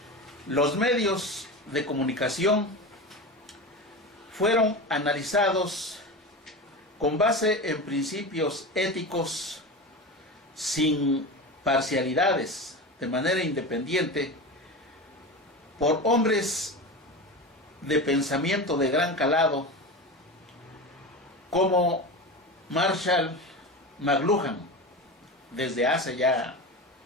Los medios de comunicación fueron analizados con base en principios éticos, sin parcialidades, de manera independiente, por hombres de pensamiento de gran calado, como Marshall McLuhan, desde hace ya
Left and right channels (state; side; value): normal; both; correlation 0.26